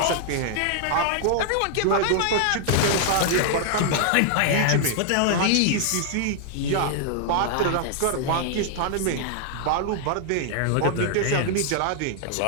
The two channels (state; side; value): different; both; correlation 0.00